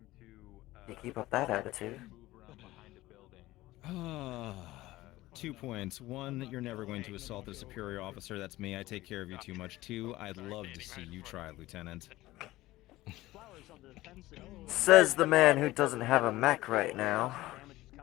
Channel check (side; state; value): right; quieter; 17.5 dB